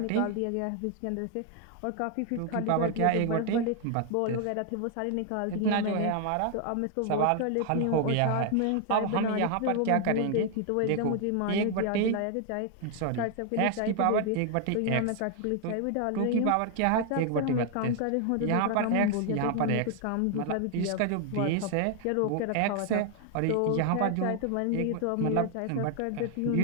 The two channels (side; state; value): both; different; correlation 0.00